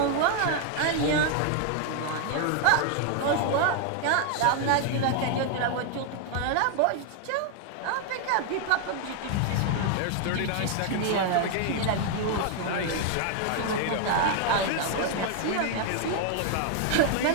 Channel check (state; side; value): different; both; correlation 0.00